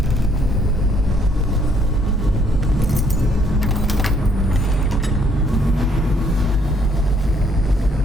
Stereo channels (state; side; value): normal; both; correlation 0.67